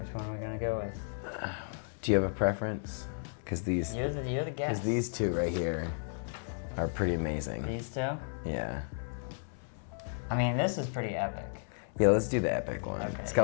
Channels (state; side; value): silent; right; 55 dB below the other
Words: one are we gonna go with? Do you have a preference? Because these... You're the guest. Because these two right here are pretty amazing. These two? Yeah. I mean, this is pretty epic. Yeah, let's do the epic one. Okay. It's got